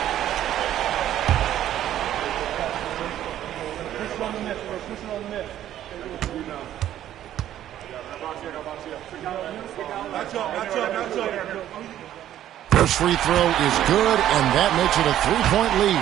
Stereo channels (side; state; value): left; quieter; 11.9 dB